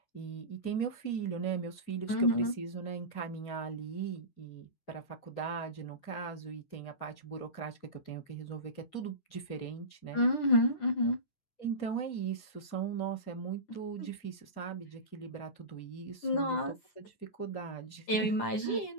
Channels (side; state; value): right; late; 9.8 ms